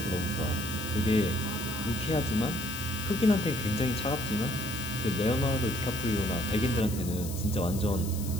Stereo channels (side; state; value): left; noise; hiss, 11 dB below the sound